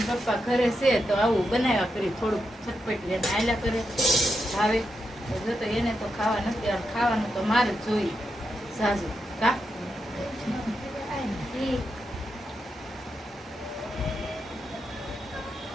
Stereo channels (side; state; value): both; normal; correlation 0.85